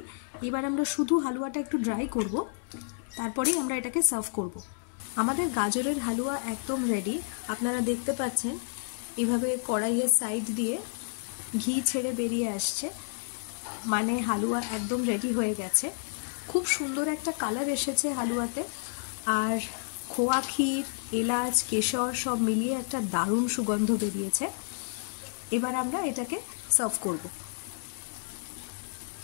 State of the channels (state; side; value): silent; right; digital silence